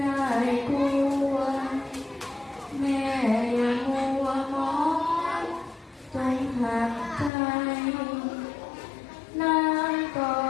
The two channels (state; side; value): drops out; right; at 7.3 s